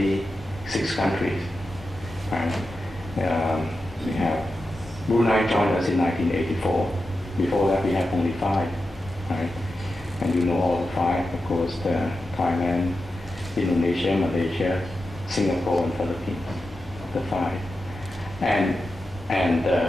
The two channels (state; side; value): normal; both; correlation 0.90